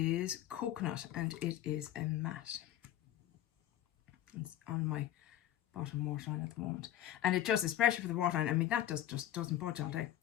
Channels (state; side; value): quieter; right; 12.3 dB